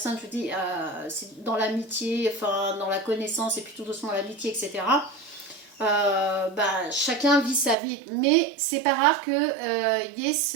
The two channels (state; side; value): drops out; left; at 7.8 s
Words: je vous dis, c'est dans l'amitié, enfin dans la connaissance, et puis tout doucement l'amitié, etc., chacun vit sa vie. Mais c'est pas rare qu'il y ait